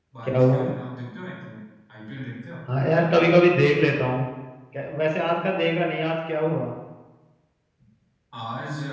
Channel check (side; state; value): both; identical; correlation 1.00